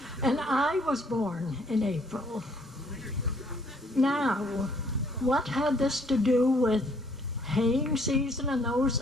and I was born in April. Now, what had this to do with haying season and those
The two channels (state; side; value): normal; both; correlation 0.64